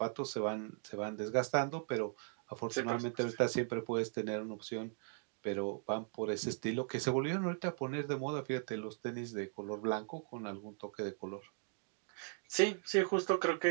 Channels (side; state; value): left; silent; 52 dB below the other